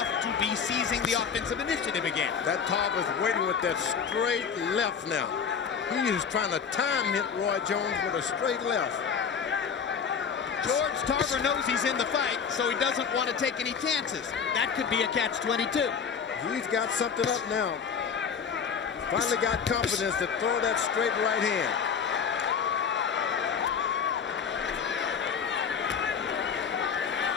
to be seizing the offensive initiative again. That Tarver's waiting with that straight left now. He is trying to time hit Roy Jones with a straight left. George Tarver knows he's in the fight, so he doesn't want to take any chances. That could be a catch-22. He's got something up now. Finally got confidence to throw that straight right hand.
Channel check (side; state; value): right; quieter; 6.6 dB